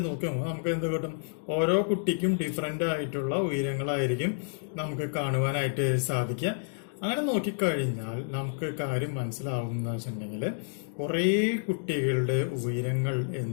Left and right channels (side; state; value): right; silent; digital silence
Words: നോക്കുമ്പോൾ നമുക്ക് എന്ത് കിട്ടും, ഓരോ കുട്ടിക്കും ഡിഫറെന്റ് ആയിട്ടുള്ള ഉയരങ്ങളായിരിക്കും നമുക്ക് കാണുവാനായിട്ട് സാധിക്കുക. അങ്ങനെ നോക്കിക്കഴിഞ്ഞാൽ നമുക്ക് കാര്യം മനസ്സിലാവുന്ന വെച്ചിട്ടുണ്ടെങ്കിൽ കുറേ കുട്ടികളുടെ ഉയരങ്ങൾ